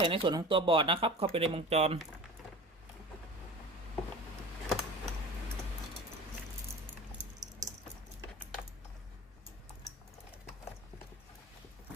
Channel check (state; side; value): normal; both; correlation 0.36